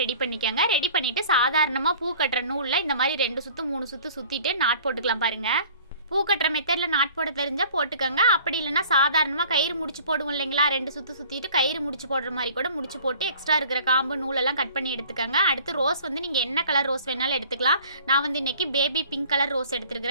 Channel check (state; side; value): inverted; both; correlation -0.49